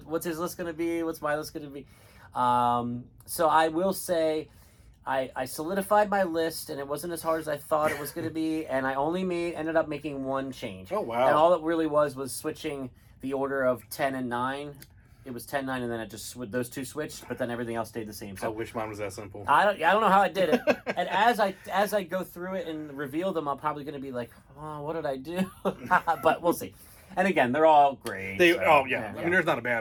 his list going to be? What's my list going to be? So I will say I solidified my list, and it wasn't as hard as I thought it was going to be, and I only ended up making one change. Oh, wow. And all it really was switching the order of 10 and 9. It was 10, 9, and then it just those two switched, but then everything else stayed the same. So I wish mine was that simple. I don't know how I did it. And as I go through it and reveal them, I'm probably going to be like, oh, what did I do? But we'll see. And again, they're all great. There's not a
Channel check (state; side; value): identical; both; correlation 1.00